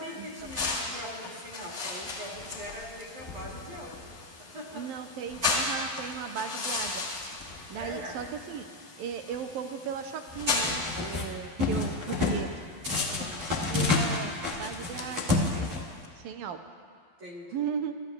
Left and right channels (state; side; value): late; left; 11 ms